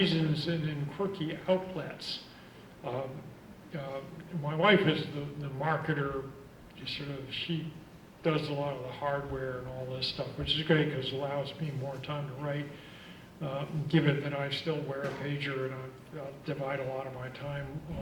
and in quirky outlets. Um, my wife is the marketer, she does a lot of the hardware and all this stuff, which is great because it allows me more time to write. Given that I still wear a pager and I'll divide a lot of my time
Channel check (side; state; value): both; identical; correlation 1.00